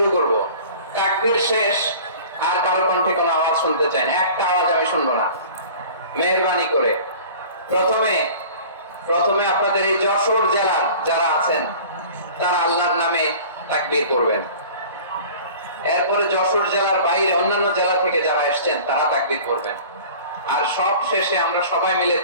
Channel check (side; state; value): both; inverted; correlation -0.43